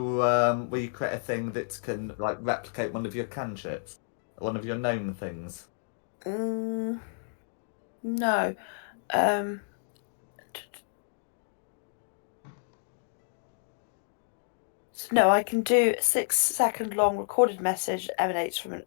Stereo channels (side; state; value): right; silent; digital silence